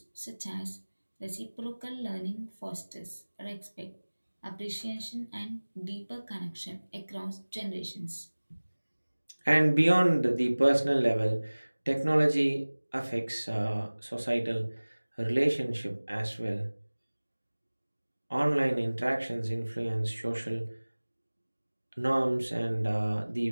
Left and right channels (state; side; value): inverted; both; correlation -1.00